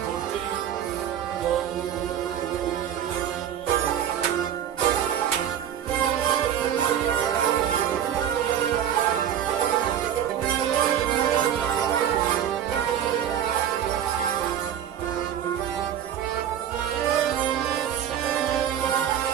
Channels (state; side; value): quieter; left; 9.8 dB